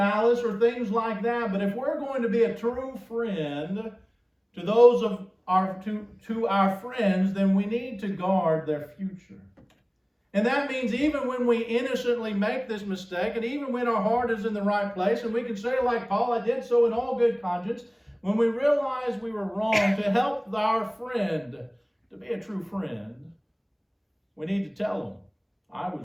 or things like that. But if we're going to be a true friend to those of to our friends, then we need to guard their future. And that means even when we innocently make this mistake, and even when our heart is in the right place, and we can say like Paul, I did so in all good conscience, when we realize we were wrong, to help our friend, to be a true friend, we need to tell them, I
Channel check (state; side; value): identical; both; correlation 1.00